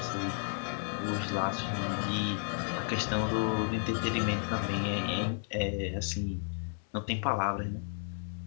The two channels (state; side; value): silent; right; 56 dB below the other